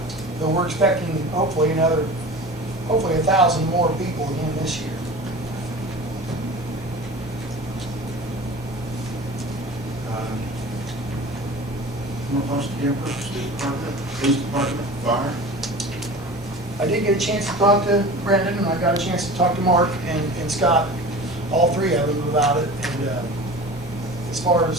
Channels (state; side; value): normal; both; correlation 0.37